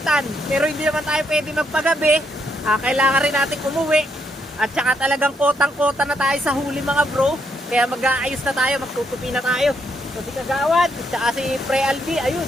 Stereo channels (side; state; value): both; normal; correlation 0.76